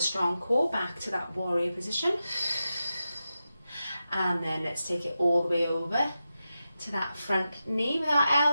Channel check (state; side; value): inverted; both; correlation -0.91